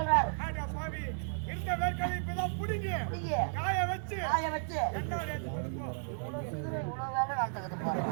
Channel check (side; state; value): left; silent; digital silence